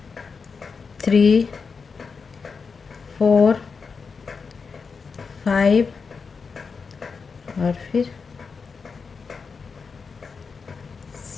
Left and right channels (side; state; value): right; quieter; 5.2 dB